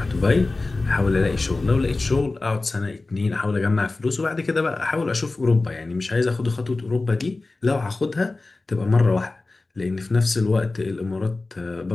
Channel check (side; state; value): right; quieter; 3.3 dB